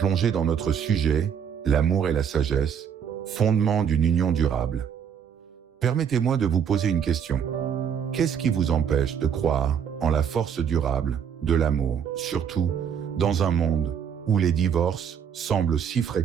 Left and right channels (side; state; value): left; quieter; 7.9 dB